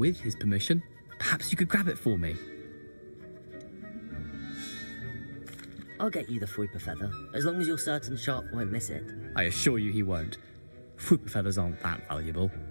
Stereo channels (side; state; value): both; inverted; correlation -1.00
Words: his permission, perhaps you could grab it for me. I'll get you the Fwooper feather, as long as you're certain Sharp won't miss it. I assure you he won't. Fwooper feathers aren't that valuable.